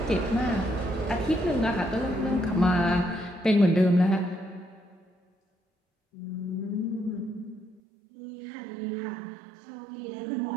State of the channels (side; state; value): left; drops out; at 7.8 s